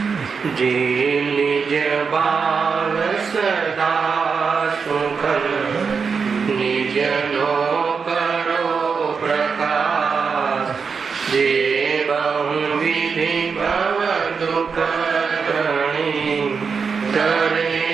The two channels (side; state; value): left; quieter; 5.6 dB